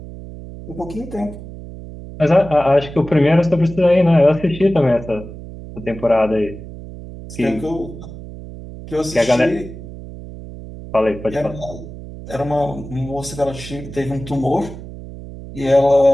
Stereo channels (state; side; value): noise; right; hum, 13 dB below the sound